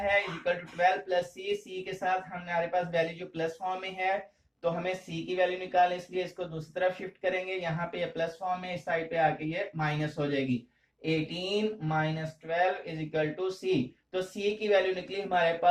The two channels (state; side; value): identical; both; correlation 1.00